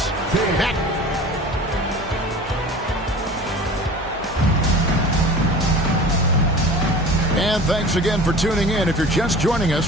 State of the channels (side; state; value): both; normal; correlation 0.40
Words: Back. And thanks again for tuning in. If you're just joining